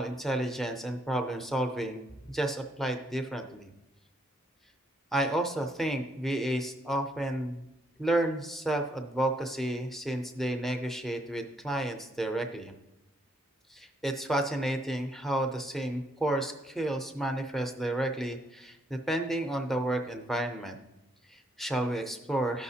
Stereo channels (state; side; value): normal; both; correlation 0.72